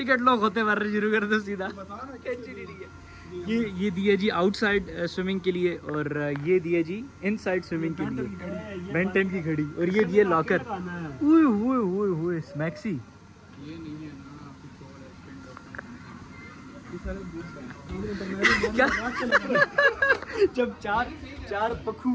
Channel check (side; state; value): both; identical; correlation 1.00